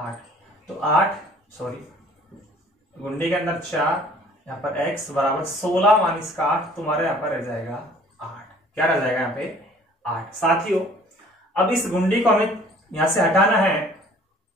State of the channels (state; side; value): normal; both; correlation 0.53